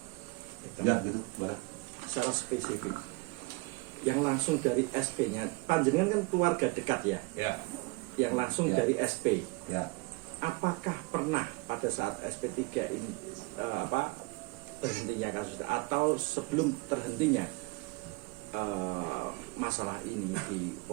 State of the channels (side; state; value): left; quieter; 26.4 dB